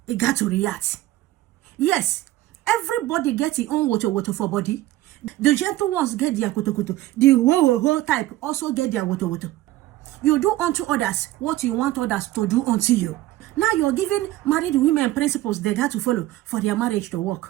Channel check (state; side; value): quieter; left; 15.8 dB